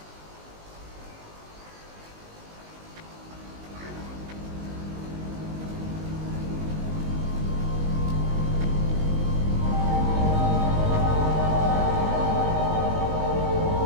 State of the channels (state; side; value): late; left; 19 ms